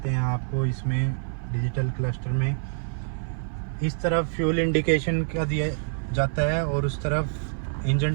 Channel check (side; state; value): left; silent; 56 dB below the other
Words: हैं आपको इसमें डिजिटल क्लस्टर में। इस तरफ फ्यूल इंडिकेशन का दिया जाता है और उस तरफ इंजन